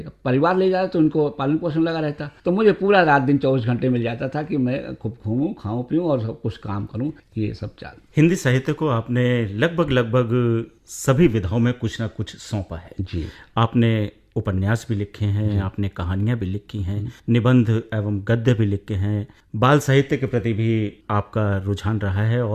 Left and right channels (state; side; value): identical; both; correlation 1.00